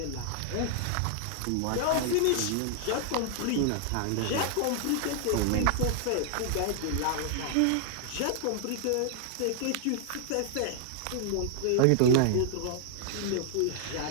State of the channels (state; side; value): different; both; correlation -0.01